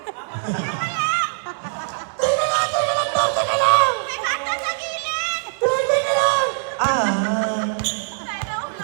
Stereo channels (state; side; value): silent; left; 60 dB below the other